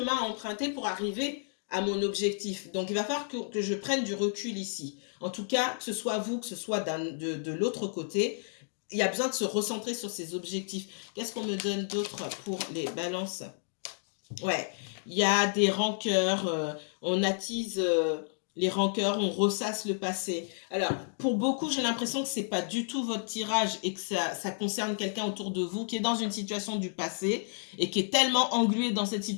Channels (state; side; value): silent; right; digital silence